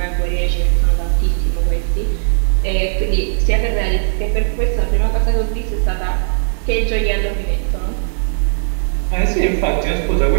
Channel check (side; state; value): left; silent; 59 dB below the other